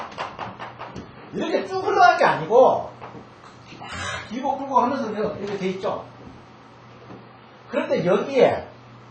이렇게 쭉 흘러갈 게 아니고, 막 길고 끌고 하면서 이렇게 돼 있죠. 그런데 여기에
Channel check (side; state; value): both; identical; correlation 1.00